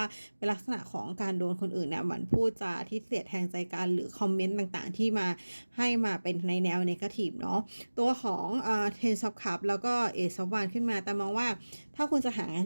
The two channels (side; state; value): both; inverted; correlation -1.00